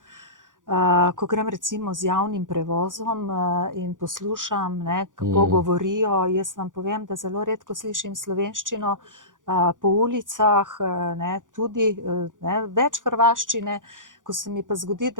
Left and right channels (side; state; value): left; late; 0.88 ms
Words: ko grem recimo z javnim prevozom in poslušam, kako govorijo. Jaz vam povem, da zelo redko slišim slovenščino po ulicah, tudi več hrvaščine. Ko se mi pa zgodi,